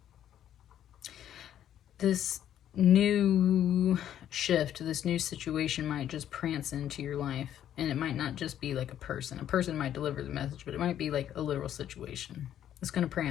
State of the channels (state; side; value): quieter; right; 10.7 dB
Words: This new shift, this new situation might just prance into your life, and it might not just be like a person. A person might deliver the message, but it might be like a literal situation. It's going to